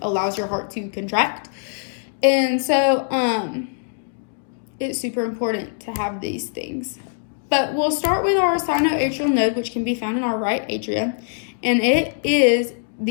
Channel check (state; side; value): silent; right; digital silence